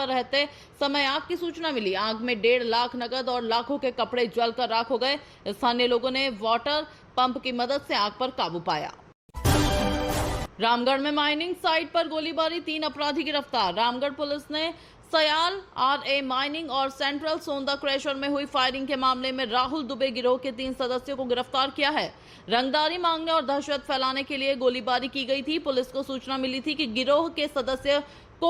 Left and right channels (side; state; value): both; identical; correlation 1.00